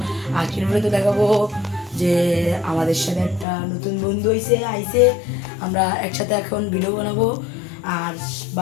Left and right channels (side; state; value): right; drops out; at 3.5 s